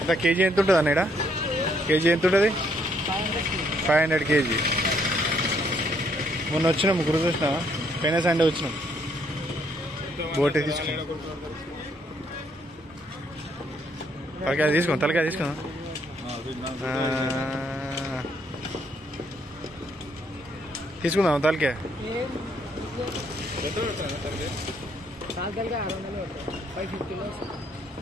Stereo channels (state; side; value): normal; both; correlation 0.70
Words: కేజీ ఎంత ఉంటుంది అన్న? కేజీ ఎంత ఉంటుంది? 500 కేజీ. మొన్న వచ్చినాం, ముగ్గురు చూసినావా? పైన సండే వచ్చినాం, బోటి తీసుకున్నాం. తలకాయ తీసుకున్నాం, తలకాయ తీసుకున్నాం. తీసుకుందాం తలకాయ.